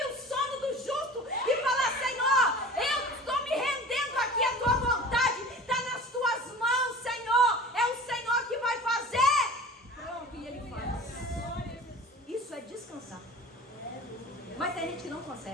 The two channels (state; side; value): normal; both; correlation 0.39